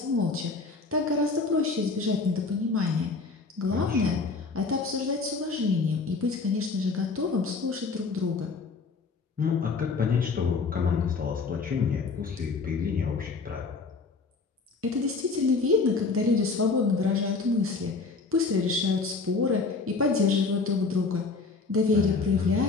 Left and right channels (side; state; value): right; quieter; 4.2 dB